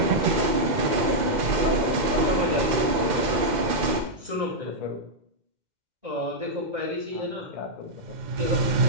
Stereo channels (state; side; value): late; left; 2.1 ms